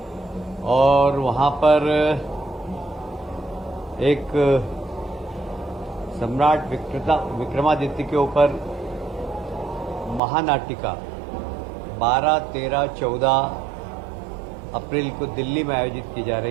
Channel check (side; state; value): left; drops out; at 10.2 s